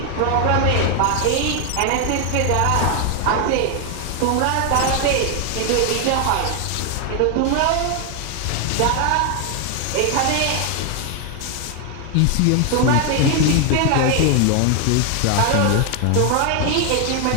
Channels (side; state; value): both; different; correlation 0.01